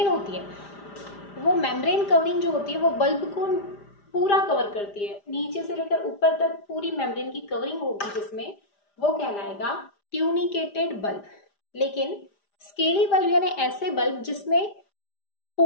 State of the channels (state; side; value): late; right; 5.0 ms